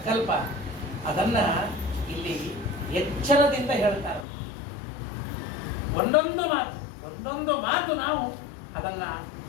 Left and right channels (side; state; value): right; drops out; at 4.2 s